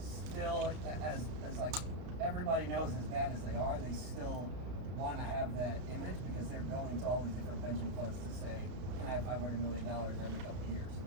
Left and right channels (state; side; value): late; left; 33 ms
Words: as like everybody knows, as bad as they are, they still want to have that image because they're going to all these different pension funds to say, can I have $500 million every couple of years?